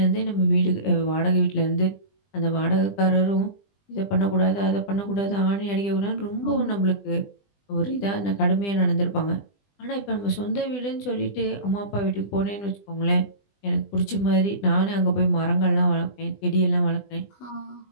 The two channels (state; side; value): late; right; 20 ms